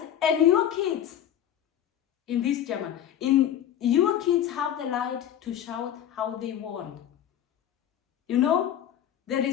and your kids in this German, in your kids have the right to shout how they want. You know, there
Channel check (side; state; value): right; quieter; 10.5 dB